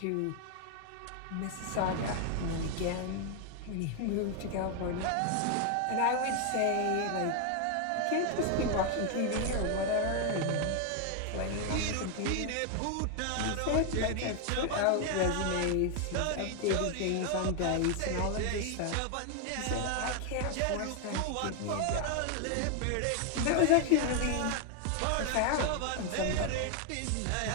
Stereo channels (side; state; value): both; different; correlation 0.00